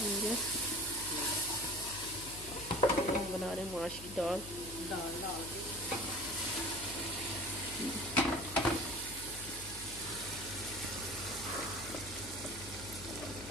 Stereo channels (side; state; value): left; noise; hum, 14 dB below the sound